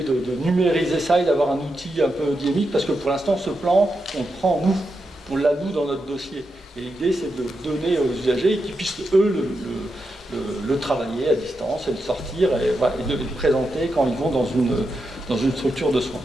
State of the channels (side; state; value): both; normal; correlation 0.86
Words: de numériser ça et d'avoir un outil un peu dynamique, parce que pour l'instant, ce plan, on prend nous, on l'a nous dans notre dossier. Et l'idée, c'est de donner aux usagers et qu'ils puissent, eux, le travailler à distance et le sortir et de le présenter quand ils vont dans une structure de soins.